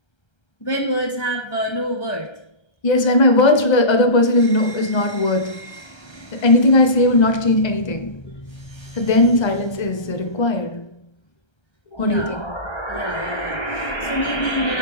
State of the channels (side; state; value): right; late; 1.3 ms